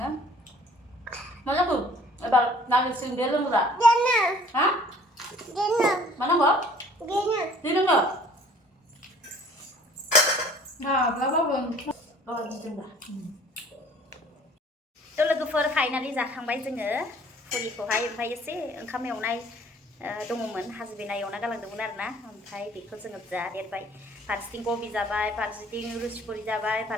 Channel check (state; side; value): normal; both; correlation 0.53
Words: nó rất cực bà làm được xương đến luôn rồi hả mà nó mở đi nó mở 또 लोगोफोर finally जाखांबाय जोङो फुरिखौहाय ओमफ्राय एसे ओंखाम एवनाय दङमोन हासबेन्डआ एवना गालांदोंमोन आरोना ओमफ्राय बेखौ जोङो जादेरबाय फारसेथिं कबि जाबाय फारसेथिं रुसि पुरि जाबाय